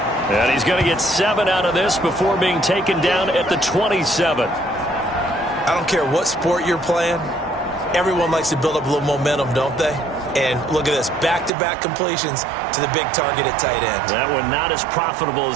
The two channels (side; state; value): left; drops out; at 11.5 s